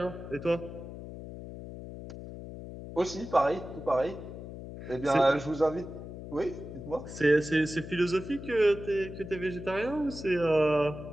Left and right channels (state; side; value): noise; left; hum, 11 dB below the sound